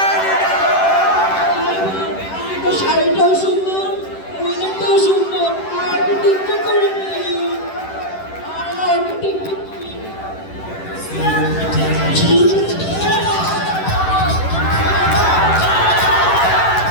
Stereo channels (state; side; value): late; right; 10 ms